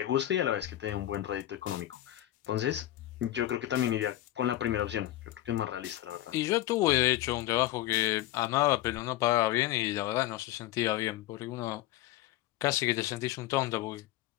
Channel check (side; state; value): right; quieter; 14.8 dB